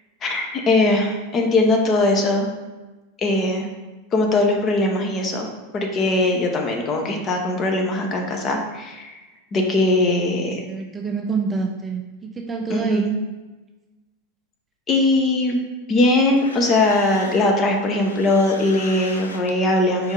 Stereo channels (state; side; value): normal; both; correlation 0.37